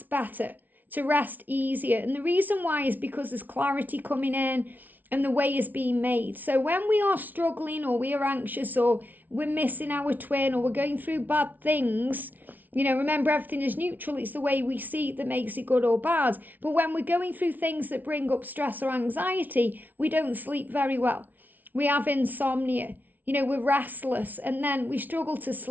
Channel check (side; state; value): left; late; 0.081 ms